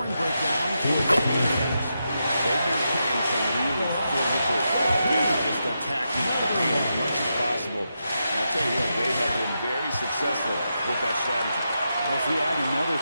breakdown for the Cavaliers. They've been playing some really physical, just attacking the paint as much as possible. And I'll tell you what, they have been very successful with that strategy. Well, if we add another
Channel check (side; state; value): both; inverted; correlation -0.86